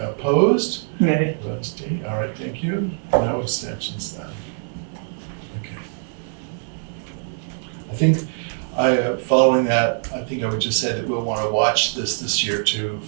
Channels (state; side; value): silent; left; digital silence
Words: Nay. Opposed, D. All right, thank you. No abstentions then. Okay. I think following that, I think I would just say that we'll want to watch this year too